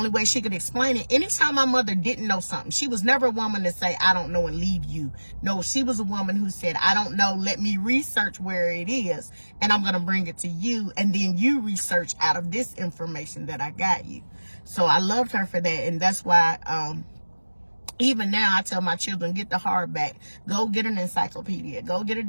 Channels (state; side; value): inverted; both; correlation -1.00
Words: way she could explain it, anytime my mother didn't know something, she was never a woman to say, I don't know, and leave you. No, she was a woman who said, I don't know, let me research where it is, and I'm going to bring it to you, and then you research out of this information that I got you. So I loved her for that, and that's why even now I tell my children, get the hardback, go get an encyclopedia, go get a